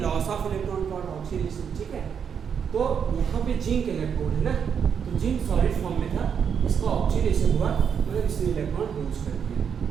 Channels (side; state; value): left; quieter; 7.3 dB